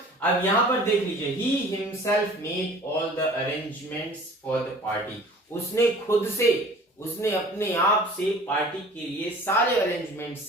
अब यहां पर देख लीजिए, he himself made all the arrangements for the party. उसने खुद से, उसने अपने आप से पार्टी के लिए सारे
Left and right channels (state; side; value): normal; both; correlation 0.46